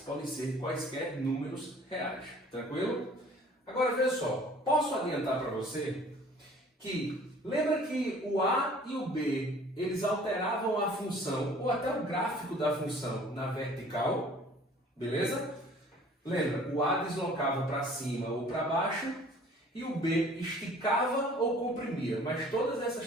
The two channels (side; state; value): both; normal; correlation 0.51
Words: podem ser quaisquer números reais, tranquilo? Agora veja só, posso adiantar para você que, lembra que o A e o B, eles alteravam a função, ou até o gráfico da função na vertical, beleza? Lembra, o A deslocava para cima ou para baixo, e o B esticava ou comprimia, mas todas